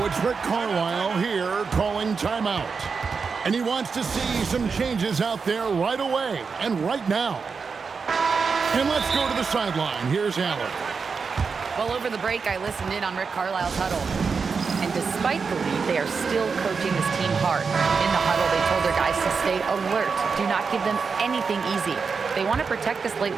it's Rick Carlisle here calling timeout. And he wants to see some changes out there right away and right now. And let's go to the sideline. Here's Allen. Well, over the break, I listened in on Rick Carlisle's huddle. And despite the lead, they are still coaching this team hard. In the huddle, they told their guys to stay alert. Do not give them anything easy. They want to protect this late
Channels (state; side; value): quieter; left; 5.3 dB